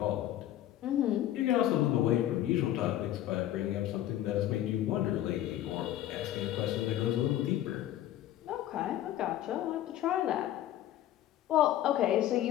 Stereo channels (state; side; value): quieter; right; 12.8 dB